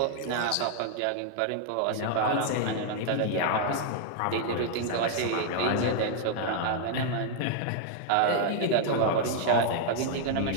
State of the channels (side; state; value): both; different; correlation -0.01